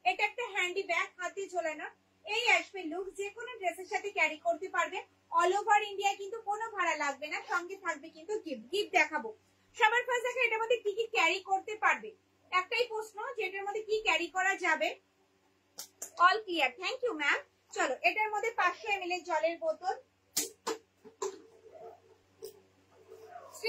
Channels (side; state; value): both; identical; correlation 1.00